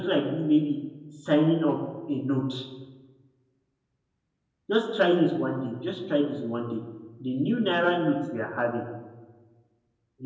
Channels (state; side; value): identical; both; correlation 1.00